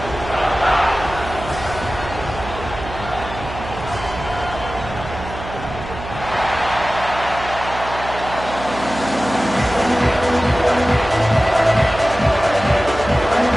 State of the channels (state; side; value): noise; right; hum, 11 dB below the sound